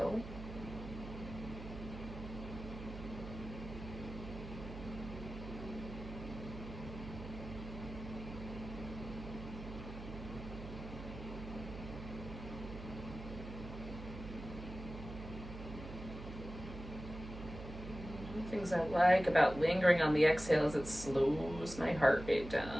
Things I like about lingering on the exhale is it slows my heart rate down.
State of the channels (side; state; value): right; noise; hum, 10 dB below the sound